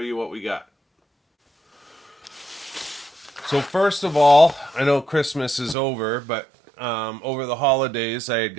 what we got. So first of all, I know Christmas is over, but over the holidays I had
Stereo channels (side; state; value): left; drops out; at 5.8 s